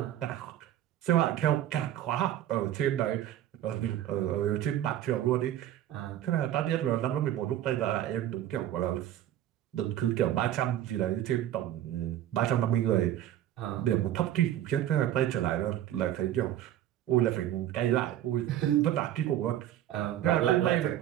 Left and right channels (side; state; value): left; quieter; 12.2 dB